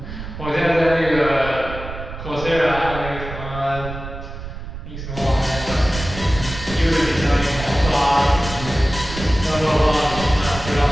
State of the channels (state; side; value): noise; right; rumble, 10 dB below the sound